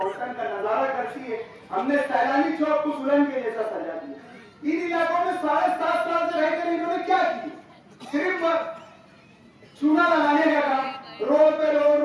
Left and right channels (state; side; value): identical; both; correlation 1.00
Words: का नजारा करती है। हमने सैलानी चौक को दुल्हन के जैसा सजा दिया। इन इलाकों में 7.5 साल से रहकर इन्होंने क्या किया? सिर्फ चूना लगाने का काम, रोड पे